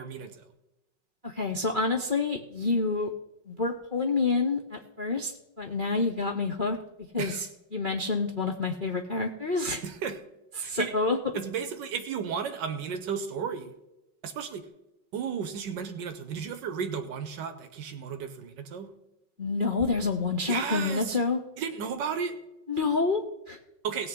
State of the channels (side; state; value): left; late; 5.4 ms